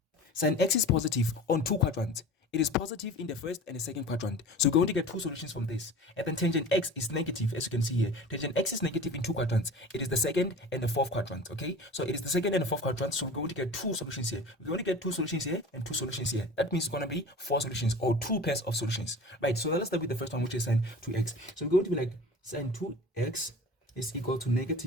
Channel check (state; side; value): normal; both; correlation 0.38